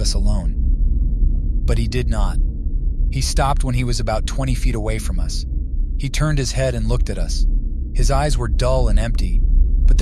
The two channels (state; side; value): identical; both; correlation 1.00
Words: us alone. But he did not. He stopped when he was about 20 feet away from us. He turned his head and looked at us. His eyes were dull and empty, but